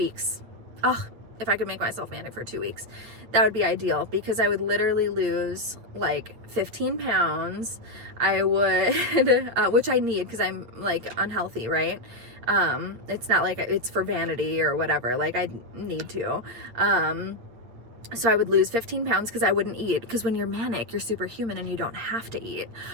Oh, if I could make myself manic for 2 weeks, that would be ideal, because I would literally lose like 15 pounds. I would, which I need, because I'm like unhealthy, right? It's not like it's for vanity or whatever. Like, I need to. So I would lose 15 pounds because I wouldn't eat. Because when you're manic, you're superhuman and you don't have to eat.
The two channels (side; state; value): left; late; 9.0 ms